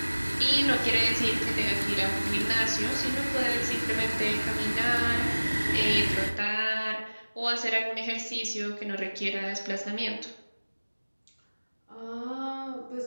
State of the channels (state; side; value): inverted; both; correlation -1.00